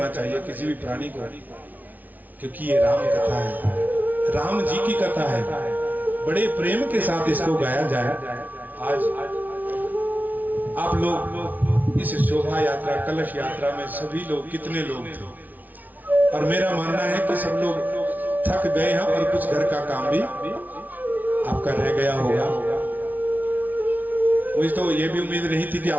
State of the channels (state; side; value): late; left; 0.079 ms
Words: चाहिए किसी भी प्राणी को, क्योंकि ये राम कथा है, राम जी की कथा है। बड़े प्रेम के साथ इसको गाया जाए। आज आप लोग इस शोभा यात्रा कलश यात्रा में सभी लोग कितने लोग थे, और मेरा मानना है कि सब लोग थक गए हैं और कुछ घर का काम भी आपका रह गया होगा। मुझे तो ये भी उम्मीद नहीं थी कि